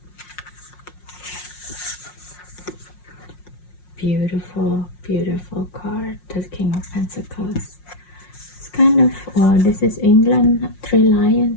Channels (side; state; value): right; late; 5.6 ms